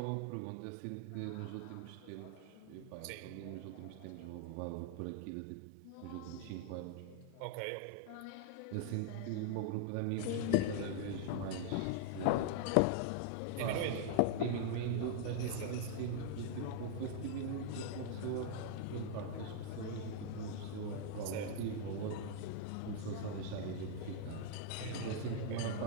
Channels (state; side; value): different; both; correlation -0.01